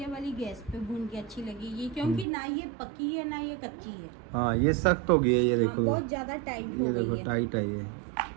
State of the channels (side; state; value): left; drops out; at 2.2 s